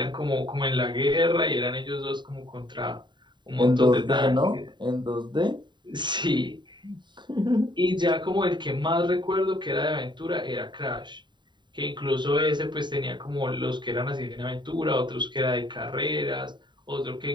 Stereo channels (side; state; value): left; late; 0.22 ms